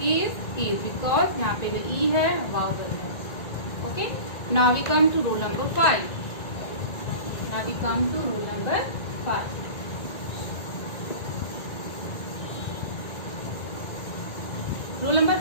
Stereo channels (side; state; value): right; late; 1.9 ms